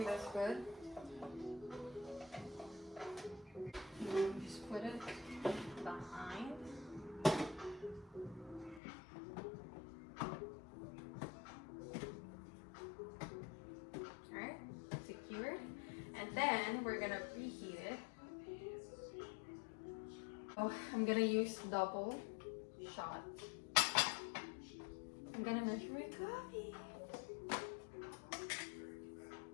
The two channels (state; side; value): drops out; right; at 8.8 s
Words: that's good. And just put it behind. Alright, secure. And then we're gonna preheat it. Oh, I'm gonna use double shot. I'm gonna measure my coffee.